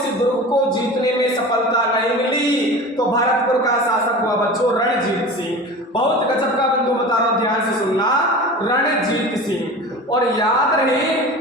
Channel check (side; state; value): both; normal; correlation 0.34